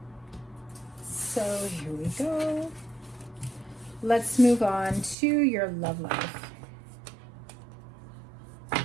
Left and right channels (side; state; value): left; drops out; at 5.2 s